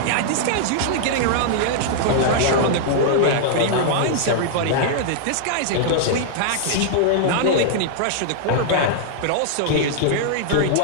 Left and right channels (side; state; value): both; different; correlation -0.01